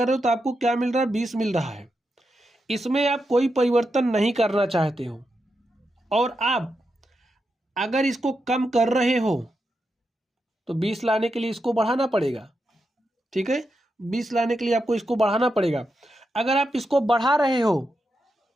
रहे हो तो आपको क्या मिल रहा है? 20 मिल रहा है। इसमें आप कोई परिवर्तन नहीं करना चाहते हो और आप अगर इसको कम कर रहे हो तो 20 लाने के लिए इसको बढ़ाना पड़ेगा, ठीक है। 20 लाने के लिए आपको इसको बढ़ाना पड़ेगा। अगर आप इसको बढ़ा रहे हो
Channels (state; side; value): normal; both; correlation 0.86